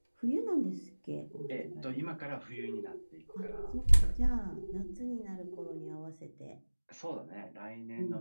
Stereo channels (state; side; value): inverted; both; correlation -1.00